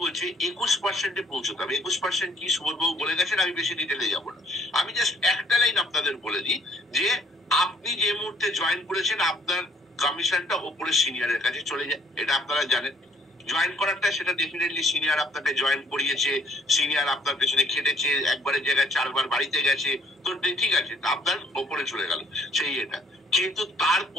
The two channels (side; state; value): both; normal; correlation 0.62